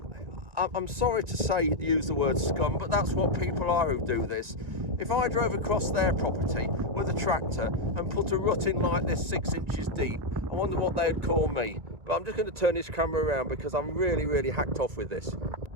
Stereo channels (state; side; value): late; left; 1.8 ms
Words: I'm sorry to say, use the word scum, but that's what people are who do this. If I drove across their property with a tractor and put a rut in like this 6 inches deep, I wonder what they'd call me. But I'm just going to turn this camera around because I'm really hacked off with this.